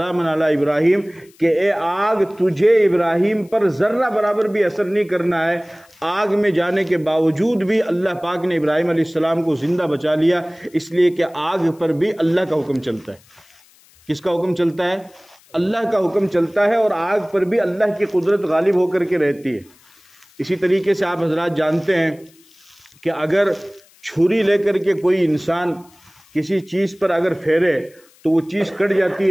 علی ابراہیم، کہ اے آگ تجھے ابراہیم پر ذرہ برابر بھی اثر نہیں کرنا ہے۔ آگ میں جانے کے باوجود بھی اللہ پاک نے ابراہیم علیہ السلام کو زندہ بچا لیا، اس لیے کہ آگ پر بھی اللہ کا حکم چلتا ہے۔ کس کا حکم چلتا ہے؟ اللہ کا حکم چلتا ہے، اور آگ پر بھی اللہ کی قدرت غالب ہو کر کے رہتی ہے۔ اسی طریقے سے آپ حضرات جانتے ہیں کہ اگر چھری لے کر کے کوئی انسان کسی چیز پر اگر پھیرے تو وہ چیز کٹ جاتی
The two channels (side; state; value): left; noise; hiss, 29 dB below the sound